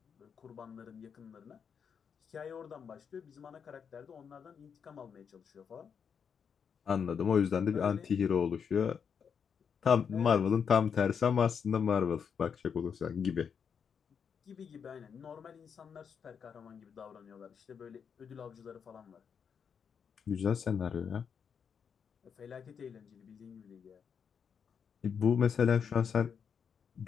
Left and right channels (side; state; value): right; quieter; 6.9 dB